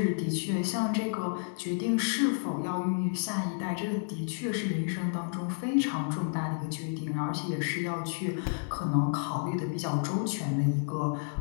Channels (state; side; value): silent; right; digital silence